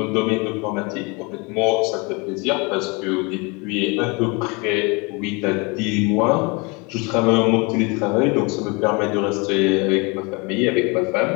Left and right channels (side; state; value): right; quieter; 28.9 dB